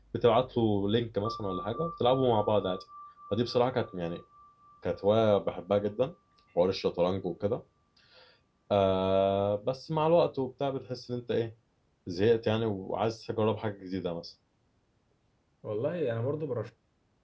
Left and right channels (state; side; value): identical; both; correlation 1.00